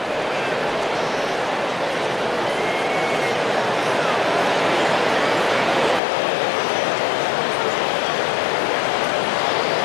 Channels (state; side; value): drops out; right; at 6.0 s